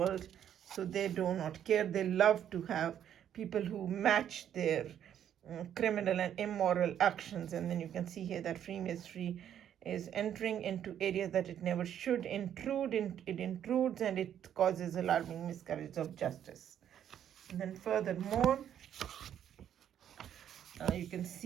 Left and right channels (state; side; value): quieter; left; 9.9 dB